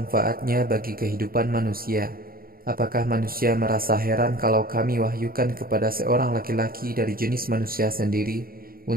bagi kehidupan manusia. Apakah manusia merasa heran kalau kami wahyukan kepada seorang laki-laki dari jenis manusia sendiri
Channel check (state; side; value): late; left; 0.43 ms